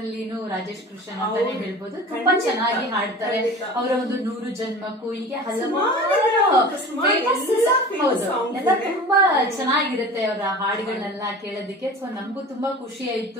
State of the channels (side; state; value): both; normal; correlation 0.38